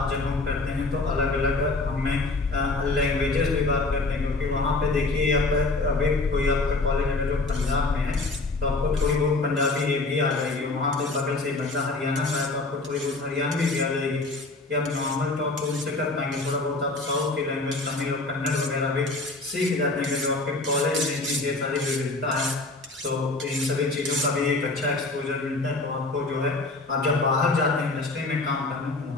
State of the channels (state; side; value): quieter; right; 3.3 dB